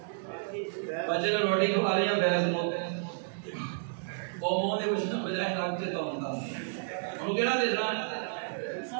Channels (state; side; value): silent; left; digital silence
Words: بچے کو روٹی کھوا رہی ہے فیس بک. وہ منہ دے کچھ نہ بجائے ناک سے تو ہوتا انہوں کہنا دیکھنا